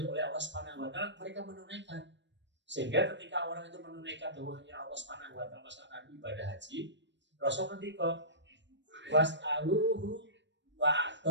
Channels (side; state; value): left; late; 0.53 ms